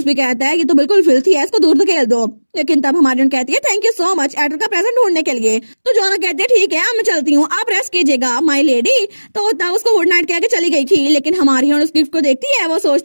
भी कहता है ये तो बिल्कुल फिल्थी है, इसको दूर धकेल दो। लेकिन तब हमारी कहती है thank you so much adder का प्रेजेंट ढूंढने के लिए। तो जोआना कहती है ठीक है मैं चलती हूँ, आप रेस्ट कीजिएगा माय लेडी। तो तब उसको गुड नाइट कह के चली गई थी। लेकिन हमारी उस गिफ्ट को देखती है, वो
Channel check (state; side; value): inverted; both; correlation -1.00